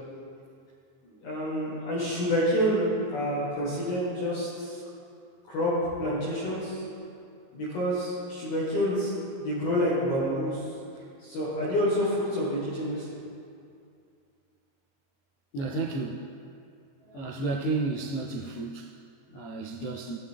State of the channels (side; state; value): right; late; 22 ms